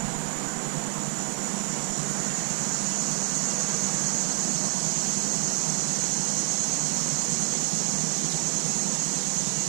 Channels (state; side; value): quieter; left; 39.7 dB